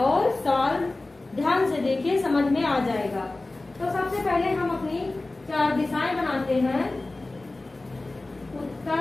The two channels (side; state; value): right; quieter; 3.0 dB